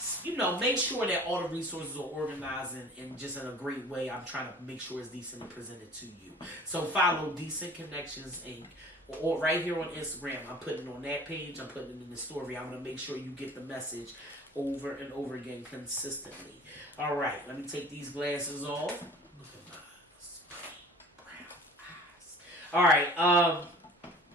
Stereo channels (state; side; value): normal; both; correlation 0.46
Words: make sure that all the resources are organized and just in a great way. I'm trying to make sure it's decently presented to you. So follow Decent Connections Inc. or right here on Instagram. I'm putting it on that page. I'm putting it in the story. I'm going to make sure you get the message over and over again consistently. All right, let me take these glasses off. Look at my brown eyes. All right,